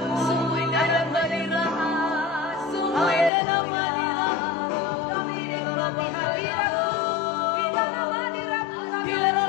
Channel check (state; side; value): drops out; right; at 3.3 s